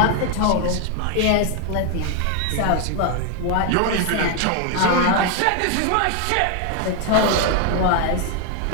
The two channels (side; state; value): both; different; correlation 0.01